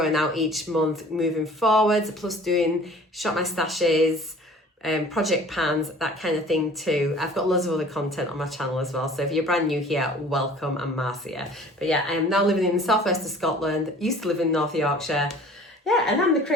out each month moving forwards, plus doing shop my stashes, project pans, that kind of thing too. I've got loads of other content on my channel as well, so if you're brand new here, welcome. I'm Marcia. But yeah, I am now living in the southwest of Scotland, used to live in North Yorkshire. Yeah, and I'm the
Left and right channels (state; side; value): normal; both; correlation 0.48